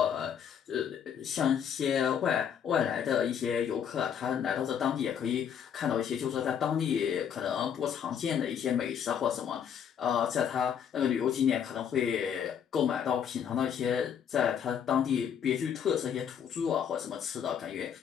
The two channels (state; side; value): quieter; right; 8.2 dB